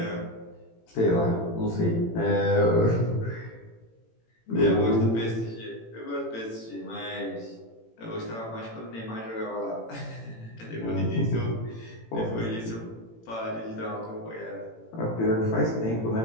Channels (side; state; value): right; late; 18 ms